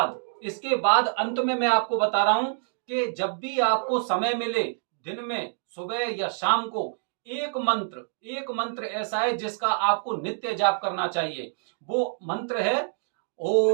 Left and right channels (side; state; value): left; silent; digital silence